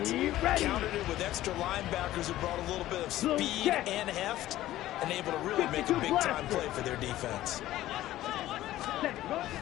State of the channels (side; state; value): right; quieter; 14.7 dB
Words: countered it with extra linebackers who brought a little bit of speed and heft, and able to really make a big-time play for their defense.